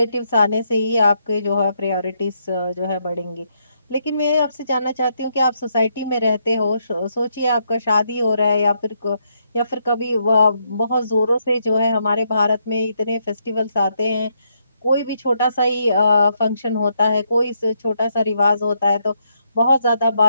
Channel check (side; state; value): both; inverted; correlation -0.77